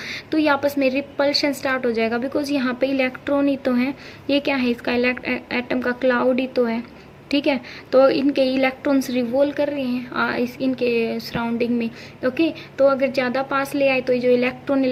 तो ये आपस में रिपल्शन स्टार्ट हो जाएगा, बिकॉज यहाँ पे इलेक्ट्रॉन ही तो है, ये क्या है, इसका एटम का क्लाउड ही तो है, ठीक है। तो इनके इलेक्ट्रॉन्स रिवॉल्व कर रहे हैं इस इनके सराउंडिंग में। ओके, तो अगर ज़्यादा पास ले आए तो ये जो इलेक्ट्रॉन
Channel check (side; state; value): both; identical; correlation 1.00